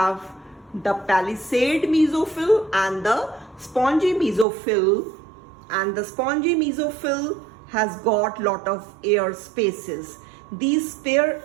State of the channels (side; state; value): left; drops out; at 4.5 s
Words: the palisade mesophyll and the spongy mesophyll, and the spongy mesophyll has got lot of air spaces. These